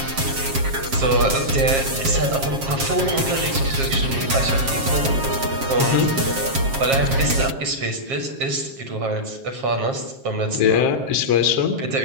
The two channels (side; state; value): left; late; 7.4 ms